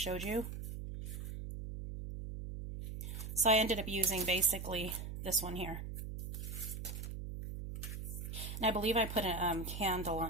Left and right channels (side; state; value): right; noise; hum, 6 dB below the sound